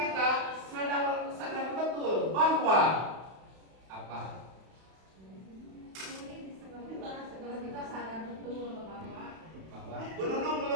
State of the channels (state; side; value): late; left; 31 ms